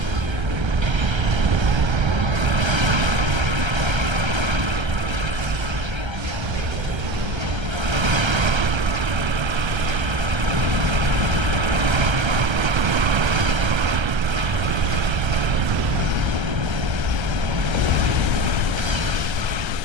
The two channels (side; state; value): left; late; 1.3 ms